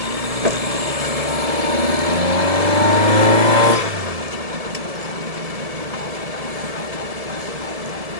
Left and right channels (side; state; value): left; late; 1.7 ms